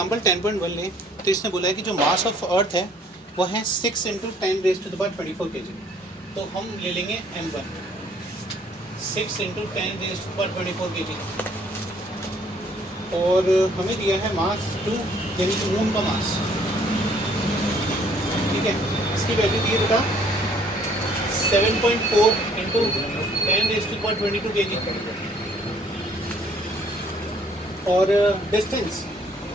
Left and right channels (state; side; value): normal; both; correlation 0.61